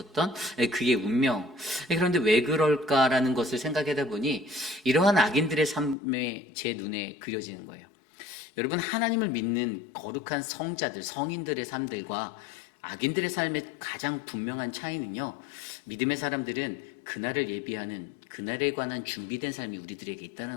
그의 운명. 그런데 왜 그럴까라는 것을 생각하다 보니 이러한 악인들의 삶에 제 눈에 그려지는 거예요. 여러분, 하나님을 믿는 거룩한 성자들, 성인들의 삶들과 악인들의 삶의 가장 분명한 차이는요, 믿음의 사람들은 그날을 예비하는, 그날에 관한 준비된 삶이 우리들에게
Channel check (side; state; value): right; drops out; at 6.0 s